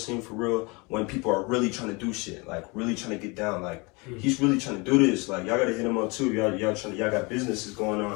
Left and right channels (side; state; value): right; quieter; 27.8 dB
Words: for real. When people are really trying to do shit, like really trying to get down, like he's really trying to do this. Like y'all gotta hit him up too. Y'all got businesses going